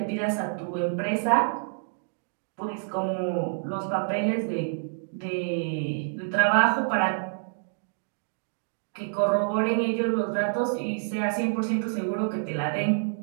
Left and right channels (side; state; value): left; silent; digital silence